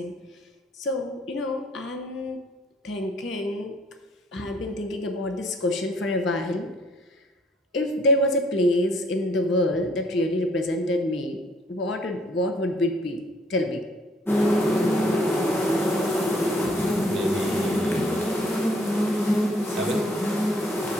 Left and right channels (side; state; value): both; normal; correlation 0.62